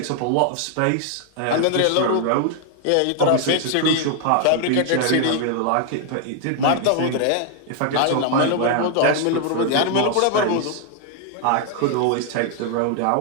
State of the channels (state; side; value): different; both; correlation 0.00